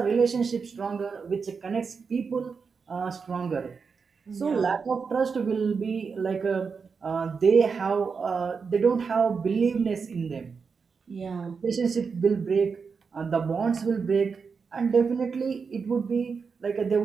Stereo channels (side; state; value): left; quieter; 5.4 dB